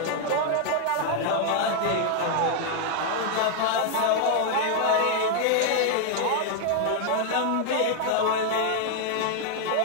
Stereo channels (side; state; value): both; different; correlation 0.00